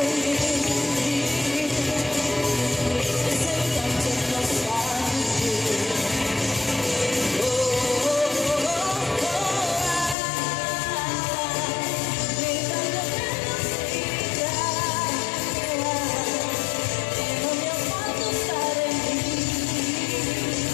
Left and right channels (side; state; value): right; drops out; at 10.2 s